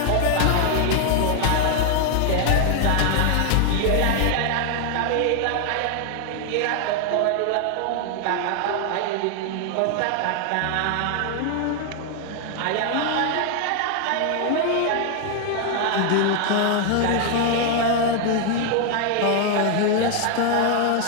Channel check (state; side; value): different; both; correlation 0.00